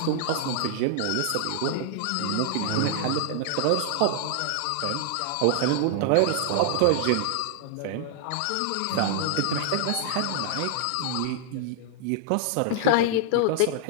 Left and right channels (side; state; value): both; different; correlation -0.01